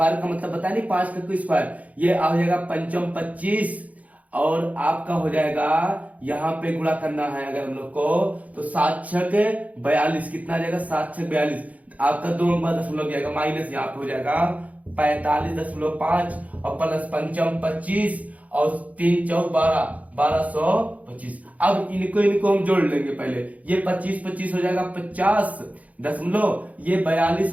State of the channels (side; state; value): left; late; 0.071 ms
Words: का मतलब बताया नहीं, 5 का स्क्वायर, ये आ जाएगा 5 25, और आपका हो जाएगा यहाँ पे गुणा करना है अगर हम लोग को, तो 7 6 42, कितना आ जाएगा 7 6 42, आपका 2 अंक बाद दशमलव जाएगा, माइनस यहाँ पे हो जाएगा 45.5 और प्लस 5 25 और 3 4 12, 1225। अब इनको हम जोड़ लेंगे पहले, ये 25 25 हो जाएगा 50 दशमलव, ये